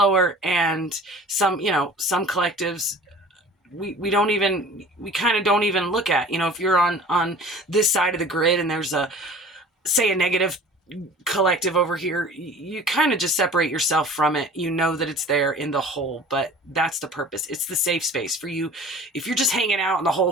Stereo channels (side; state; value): both; normal; correlation 0.44